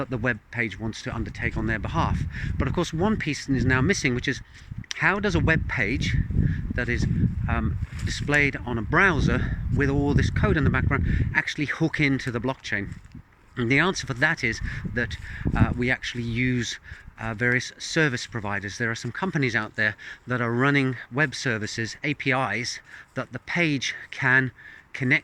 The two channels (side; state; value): both; identical; correlation 1.00